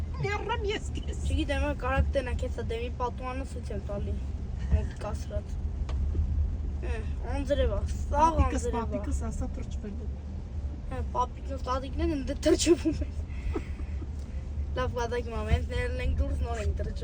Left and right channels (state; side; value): identical; both; correlation 1.00